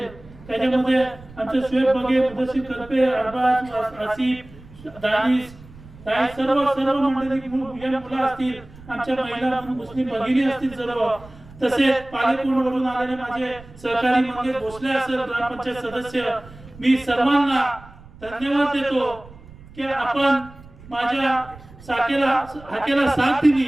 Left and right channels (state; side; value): noise; right; rumble, 20 dB below the sound